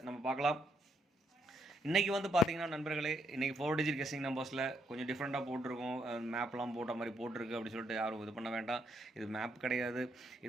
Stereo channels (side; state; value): both; normal; correlation 0.75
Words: நம்ம பார்க்கலாம். இன்றைக்கி வந்து பார்த்தீங்கன்னா நண்பர்களே, இன்றைக்கி 4 டிஜிட் கெஸ்ஸிங் நம்பர்ஸில் கொஞ்சம் டிஃப்ரெண்ட்டாக போட்டிருக்கோம். மேப்லாம் போட்ட மாதிரி போட்டிருக்கு அப்படின்னு சொல்லிட்டு யாரும் இது பண்ண வேண்டாம். இது மேப் கிடையாது.